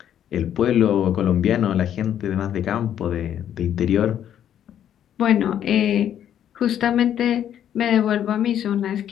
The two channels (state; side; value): quieter; right; 10.1 dB